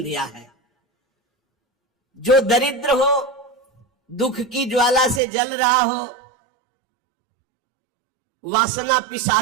दिया है, जो दरिद्र हो, दुख की ज्वाला से जल रहा हो, वासना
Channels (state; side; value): drops out; left; at 5.2 s